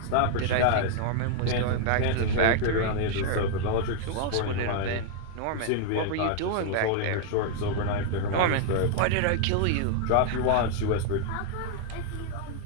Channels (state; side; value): different; both; correlation 0.00